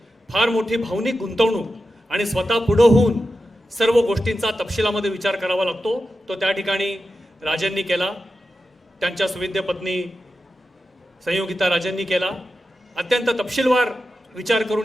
फार मोठी भावनिक गुंतवणूक आणि स्वतः पुढे होऊन सर्व गोष्टींचा तपशिलामध्ये विचार करावा लागतो. तो त्या ठिकाणी राजेंनी केला, त्यांच्या सुविद्य पत्नी संयोगिता राजेंनी केला. अत्यंत तपशीलवार विचार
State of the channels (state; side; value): normal; both; correlation 0.91